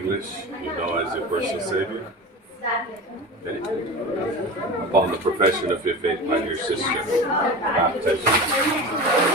you know as your personal Savior. Okay. Upon the profession of your faith, my dear sister, baptized in the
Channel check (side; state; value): both; normal; correlation 0.30